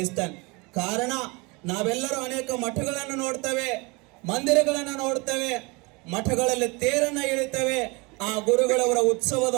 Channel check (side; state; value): left; quieter; 27.2 dB